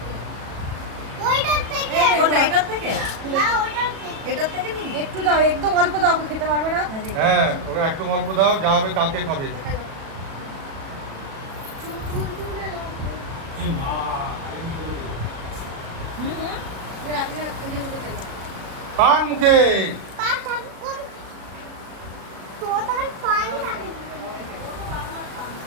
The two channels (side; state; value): left; late; 37 ms